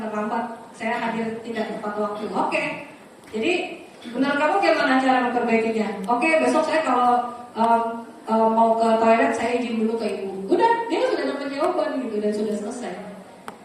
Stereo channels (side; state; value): both; identical; correlation 1.00